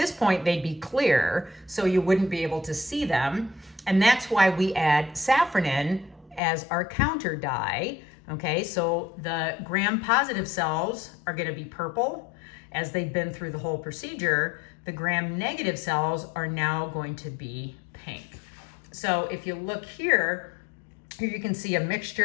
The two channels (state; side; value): drops out; right; at 6.4 s